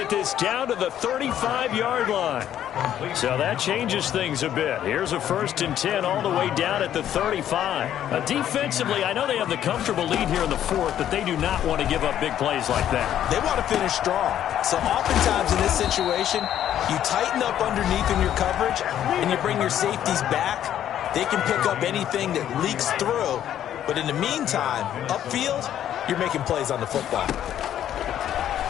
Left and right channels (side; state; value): right; quieter; 10.9 dB